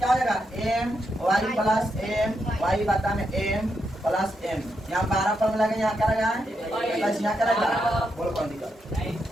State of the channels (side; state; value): both; normal; correlation 0.83